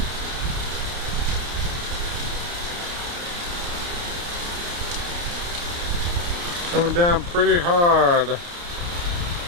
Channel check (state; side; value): late; left; 29 ms